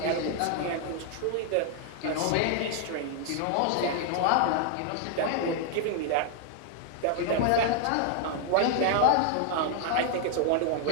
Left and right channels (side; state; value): both; different; correlation 0.00